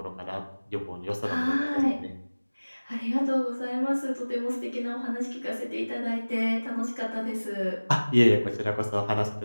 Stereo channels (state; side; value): inverted; both; correlation -1.00